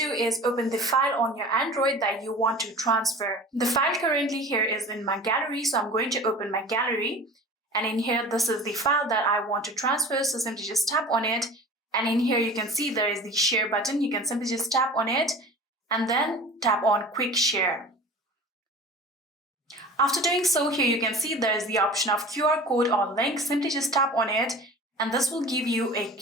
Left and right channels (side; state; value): both; normal; correlation 0.39